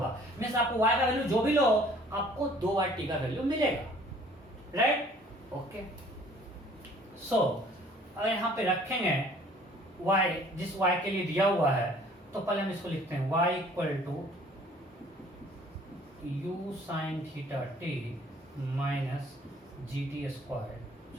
मींस आपको y का वैल्यू जो भी लो आपको 2y t का वैल्यू मिलेगा, राइट? ओके, सो अगर यहाँ पे रखेंगे y, जिस y के लिए दिया हुआ है, तो पहले हम इसको लिखते हैं y equal to u sine theta t minus g t square.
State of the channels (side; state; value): both; normal; correlation 0.55